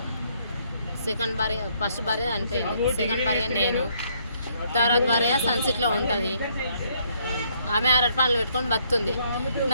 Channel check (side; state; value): both; inverted; correlation -0.69